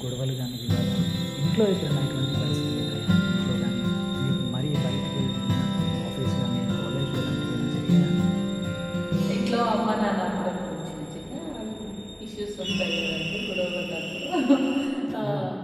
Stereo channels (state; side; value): identical; both; correlation 1.00